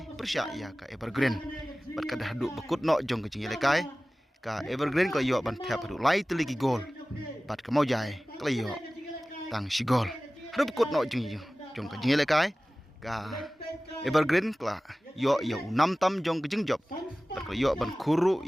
persya ya ka Evergreen bat kada haduk bekut no jong kajing lekai ka Evergreen ko yo ban thap haduk lai teliki gol bat ka maujai klayo tang sigol hadu bekut no jong ka jing lekai ka Evergreen kla yo 6 tam jong ke jing job bat yo ban kuru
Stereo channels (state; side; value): normal; both; correlation 0.97